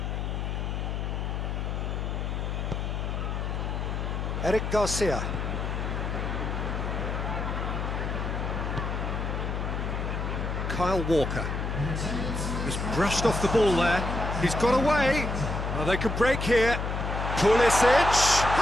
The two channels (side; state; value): left; noise; hum, 2 dB below the sound